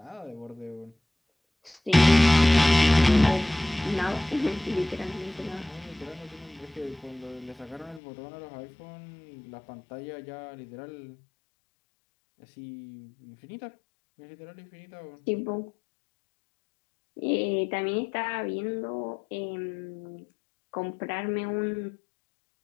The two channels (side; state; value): right; drops out; at 8.0 s